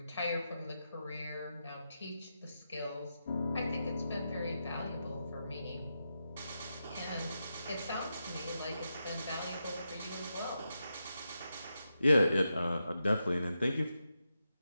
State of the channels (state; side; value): inverted; both; correlation -0.87